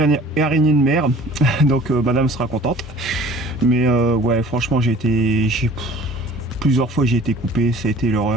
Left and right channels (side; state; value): both; normal; correlation 0.48